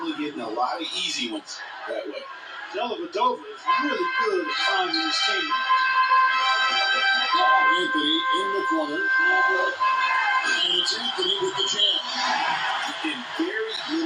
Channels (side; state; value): both; identical; correlation 1.00